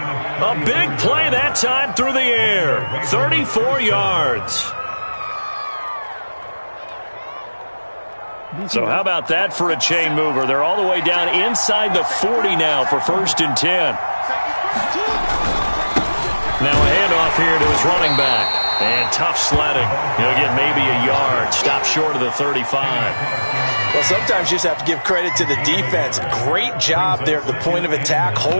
big play that time through the air. 34 yards. So how about that for a chain mover? They're all the way down inside the 40 now for 1st and 10. Now a handoff here to his running back. And tough sledding. He'll get maybe a yard. Stop short of the 35. Well, sometimes you just have to give credit to the defense. Great job there at the point of attack,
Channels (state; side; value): inverted; both; correlation -1.00